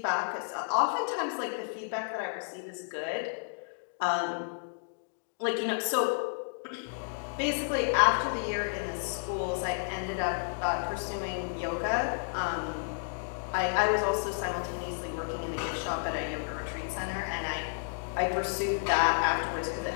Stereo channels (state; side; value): silent; right; digital silence